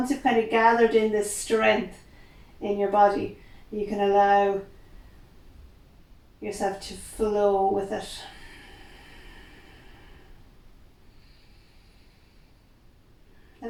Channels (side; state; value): both; identical; correlation 1.00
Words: you've kind of gathered in this strength in your body, you can allow yourself to flow with it. The